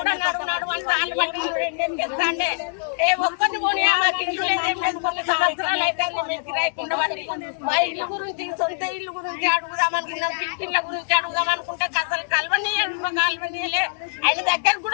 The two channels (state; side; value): silent; right; digital silence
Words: నడువు అంటే వాళ్ళు బట్టి రెండేం చేస్తాండే ఏ ఒక్కటి పోనీ మాకు ఇల్లు లేదేం లేదు. కొన్ని సంవత్సరాలు అయితే మేము కిరాయికుండా పడి మా ఇల్లు గురించి సొంత ఇల్లు గురించి అడుగుదాం అనుకున్నాం, పిట్టిళ్ళ గురించి అడుగుదాం అనుకుంటే అసలు కలవనీయలే, ఆయన దగ్గర